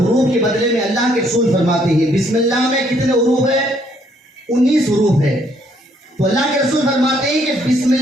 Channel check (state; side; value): normal; both; correlation 0.68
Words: کے بدلے میں اللہ کے رسول فرماتے ہیں بسم اللہ میں کتنے حروف ہے؟ 19 حروف ہے. تو اللہ کے رسول فرماتے ہیں کہ بسم